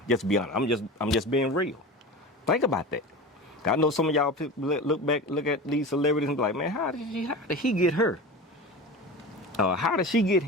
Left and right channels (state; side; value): normal; both; correlation 0.31